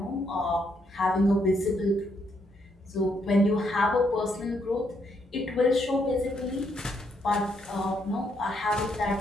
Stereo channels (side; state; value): both; normal; correlation 0.75